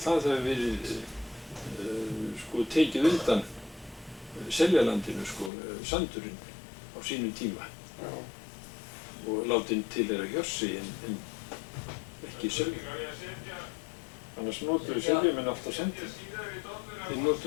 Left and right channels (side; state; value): right; drops out; at 5.5 s